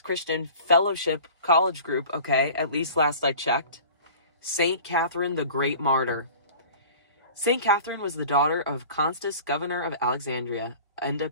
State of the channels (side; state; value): both; inverted; correlation -0.42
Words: Fellowship College Group, okay? At least last I checked. Saint Katherine, the Great Martyr. Saint Katherine was the daughter of Constans, governor of Alexandria, and a